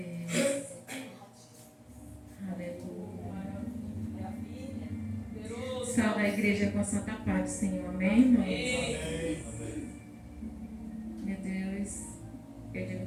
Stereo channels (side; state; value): both; identical; correlation 1.00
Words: Aleluia. Salve a igreja com a santa paz do Senhor. Amém, irmãos? Meu Deus, eu digo